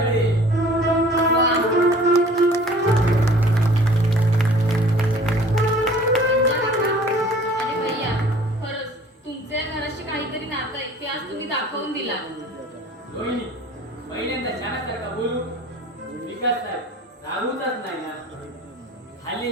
अरे भैया, खरंच तुमच्या या घराशी काहीतरी नातं आहे ते आज तुम्ही दाखवून दिला. रोहिणी, पहिल्यांदा छानासारखा बोलू. विकास साहेब रागूचाच नाही ना.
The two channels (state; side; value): normal; both; correlation 0.49